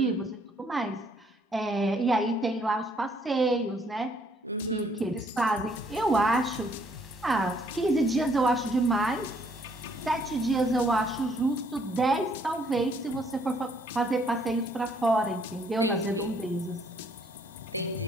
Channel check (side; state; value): both; normal; correlation 0.66